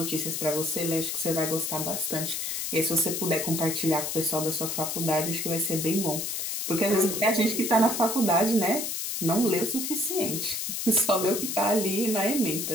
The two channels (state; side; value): noise; left; hiss, 3 dB below the sound